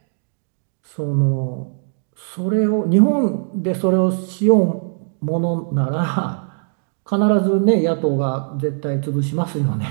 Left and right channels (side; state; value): left; silent; digital silence